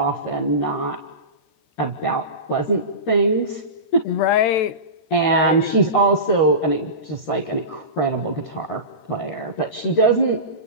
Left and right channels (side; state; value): right; late; 13 ms